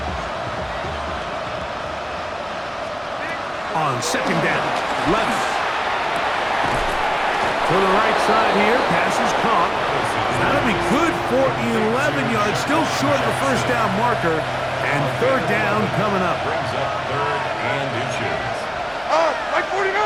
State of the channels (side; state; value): both; identical; correlation 1.00